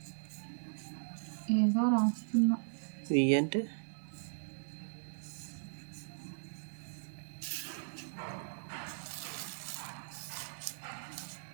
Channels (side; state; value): left; silent; 53 dB below the other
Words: ఏదో రాస్తున్నా. వి అంటే